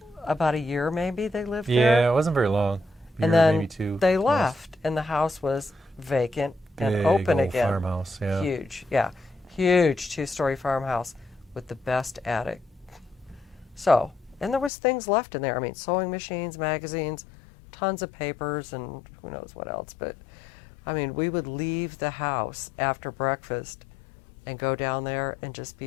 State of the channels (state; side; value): drops out; right; at 14.7 s